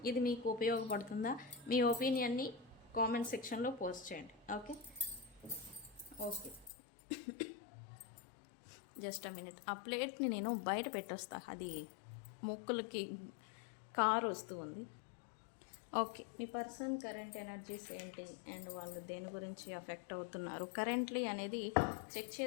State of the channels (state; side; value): drops out; right; at 6.7 s